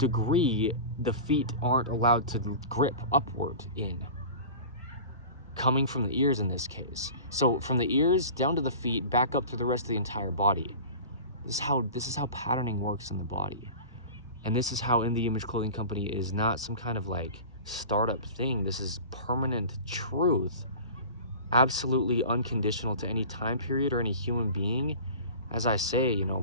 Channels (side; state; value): both; inverted; correlation -0.36